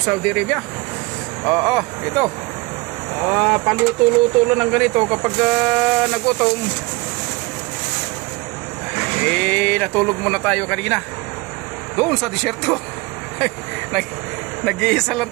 Saudi Arabia. Ito. Paluto-luto lang ng ganito kapag nagutom. Natulog muna tayo kanina doon sa disyerto. Nag-iisa lang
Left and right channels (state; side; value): quieter; left; 24.9 dB